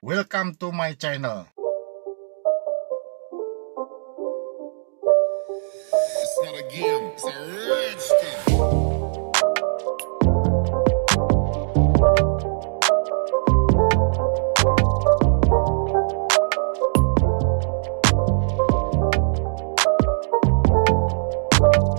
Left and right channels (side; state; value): left; silent; digital silence